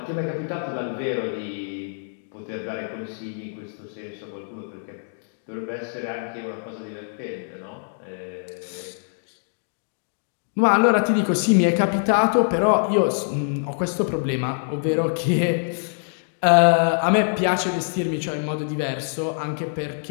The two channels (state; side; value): silent; right; digital silence